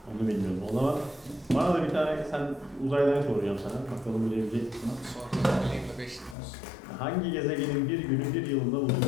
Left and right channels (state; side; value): drops out; right; at 6.4 s